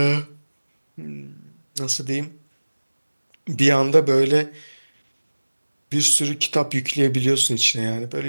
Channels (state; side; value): inverted; both; correlation -1.00